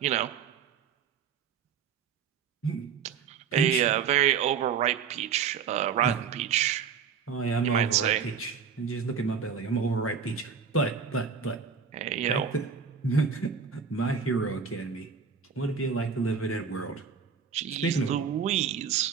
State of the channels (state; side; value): quieter; left; 6.5 dB